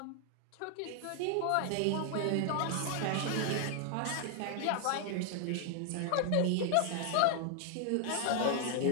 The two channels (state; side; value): different; both; correlation 0.00